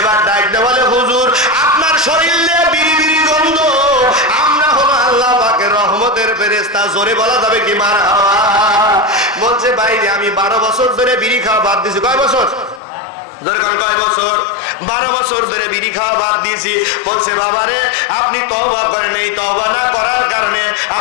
ডাকতে বলে, হুজুর আপনার শরীর দিয়ে বিড়ি বিড়ি গন্ধ, আমরা হলো আল্লাহ পাকের রহমতের ফেরেশতা। জোরে বলা যাবে কি মারহাবা? বলছে, ভাই আমি 12 বছর ধরে বিড়ি খাওয়া বাদ দিয়েছি। কয় বছর? কয় বছর? 12 বছর ধরে বিড়ি খাওয়া বাদ দিয়েছি। বলছে, বাবারে আপনি তওবা করেন, এই তওবা না করার কারণে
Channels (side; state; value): right; drops out; at 12.8 s